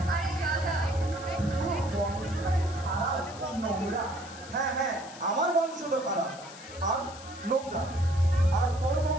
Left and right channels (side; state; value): left; noise; hiss, 17 dB below the sound